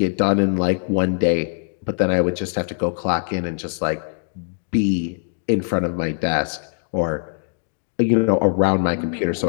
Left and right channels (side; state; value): right; silent; 64 dB below the other